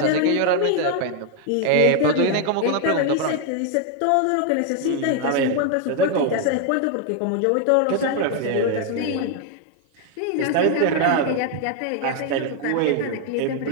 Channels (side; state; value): both; different; correlation 0.00